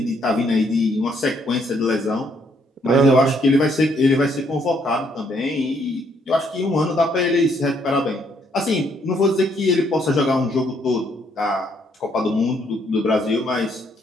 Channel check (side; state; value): both; normal; correlation 0.70